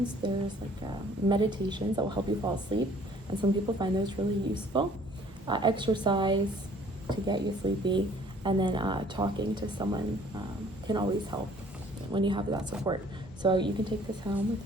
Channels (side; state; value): both; normal; correlation 0.56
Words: There's like meditations that will help you fall asleep, and some people find those really useful. Exercise to get you sleepy, and then talking to someone can always help when you have that support. So you can take this home with